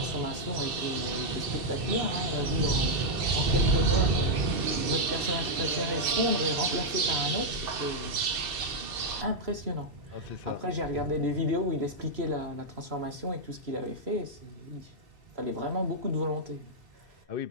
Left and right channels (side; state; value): left; late; 2.7 ms